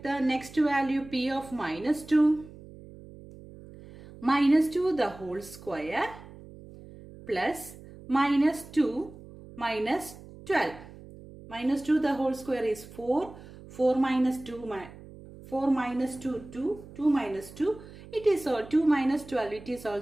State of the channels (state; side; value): noise; right; hum, 18 dB below the sound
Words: the next value, p of minus 2. Minus 2 the whole square plus minus 2 minus 12. Minus 2 the whole square is 4. 4 minus 2, 4 minus 2, 2. 2 minus 2. It is 2 minus 12. It is